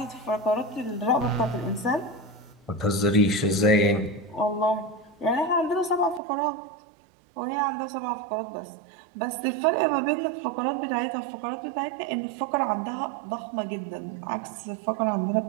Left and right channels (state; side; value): drops out; left; at 6.2 s